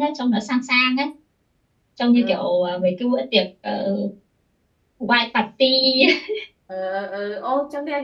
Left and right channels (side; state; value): both; identical; correlation 1.00